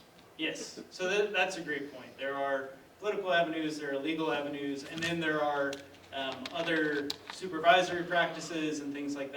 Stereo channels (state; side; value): identical; both; correlation 1.00